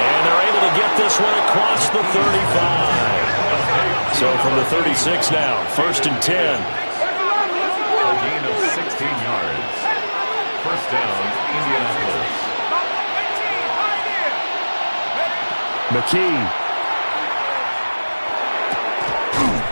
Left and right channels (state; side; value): inverted; both; correlation -1.00